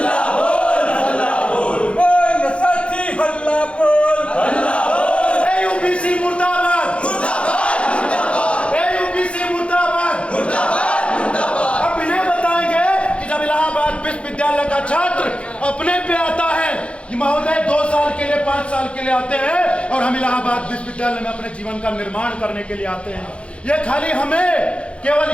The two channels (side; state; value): right; late; 0.060 ms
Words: बोल, हल्ला बोल। बोल साथी, हल्ला बोल, हल्ला बोल। AUBC मुर्दाबाद, मुर्दाबाद, मुर्दाबाद, AUBC मुर्दाबाद, मुर्दाबाद, मुर्दाबाद। अब इन्हें बताएंगे कि जब इलाहाबाद विश्वविद्यालय का छात्र अपने पे आता है, ये महोदय 2 साल के लिए 5 साल के लिए आते हैं और हम इलाहाबाद विश्वविद्यालय में अपने जीवन का निर्माण करने के लिए आते हैं। ये खाली हमें केवल